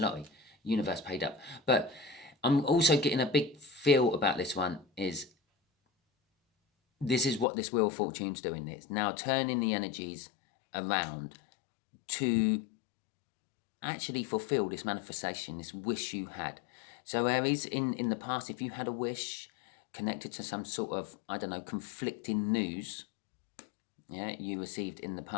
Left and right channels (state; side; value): drops out; right; at 7.5 s